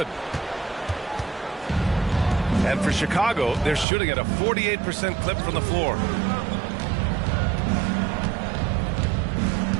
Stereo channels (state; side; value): drops out; left; at 3.9 s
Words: And for Chicago, they're shooting at a 48% clip from the floor.